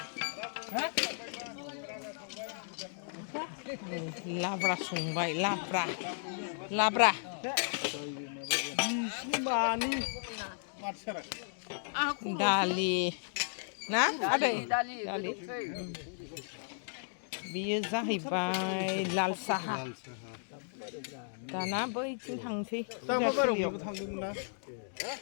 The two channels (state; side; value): silent; right; digital silence